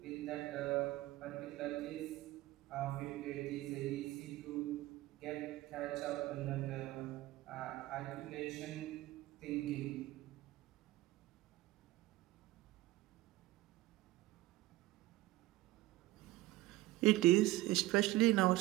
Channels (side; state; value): left; quieter; 17.5 dB